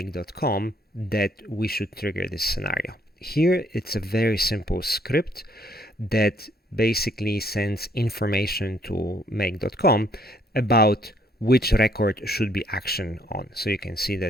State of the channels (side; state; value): both; normal; correlation 0.67